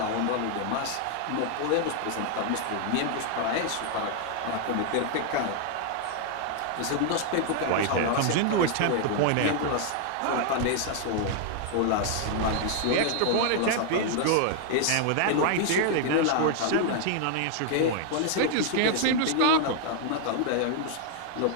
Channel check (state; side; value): different; both; correlation 0.00